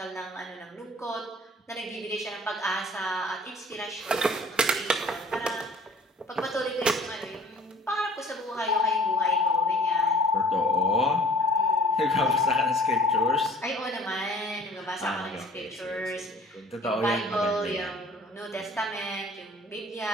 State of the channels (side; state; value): both; normal; correlation 0.48